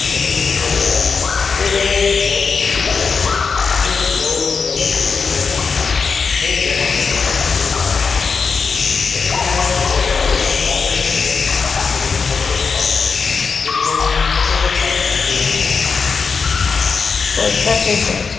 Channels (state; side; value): quieter; right; 5.2 dB